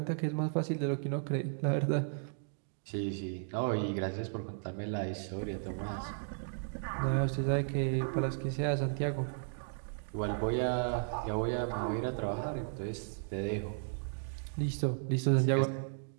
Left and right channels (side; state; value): left; silent; digital silence